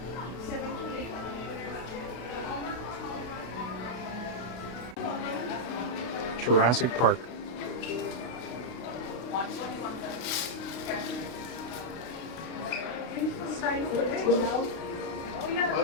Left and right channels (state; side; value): late; right; 32 ms